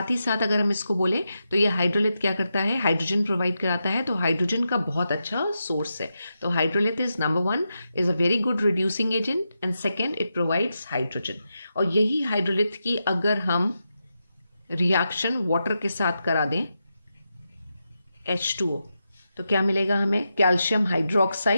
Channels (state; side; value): inverted; both; correlation -0.87